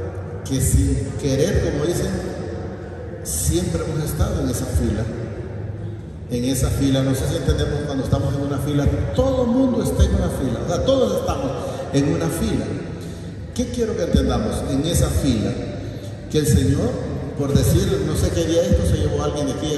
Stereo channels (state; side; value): identical; both; correlation 1.00